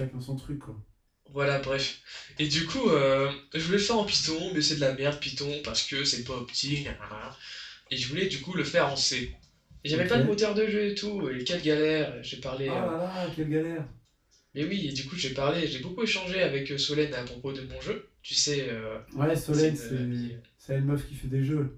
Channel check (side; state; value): both; identical; correlation 1.00